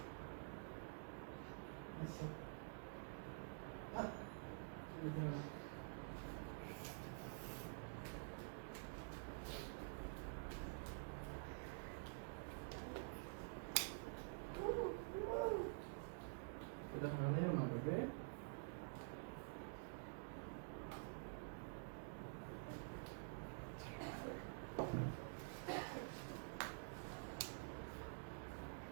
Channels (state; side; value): silent; left; digital silence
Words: এটা হারানেও না তোকে।